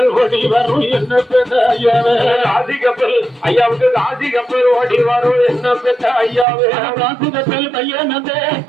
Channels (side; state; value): left; drops out; at 6.5 s